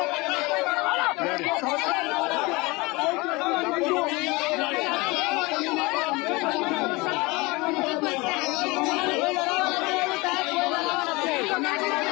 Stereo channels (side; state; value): right; quieter; 24.2 dB